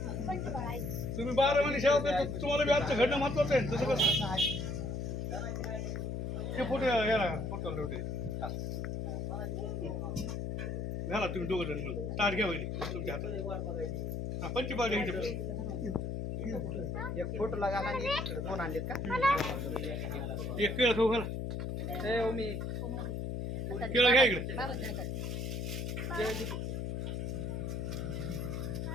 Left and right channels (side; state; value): left; noise; hum, 3 dB below the sound